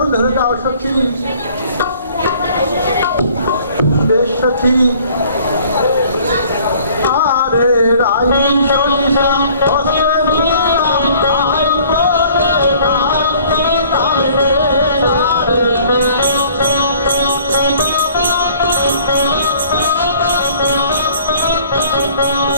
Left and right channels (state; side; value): inverted; both; correlation -0.54